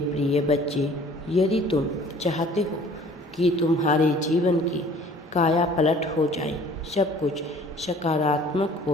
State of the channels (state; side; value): normal; both; correlation 0.52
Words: प्रिय बच्चे, यदि तुम चाहते हो कि तुम्हारे जीवन की काया पलट हो जाए, सब कुछ सकारात्मक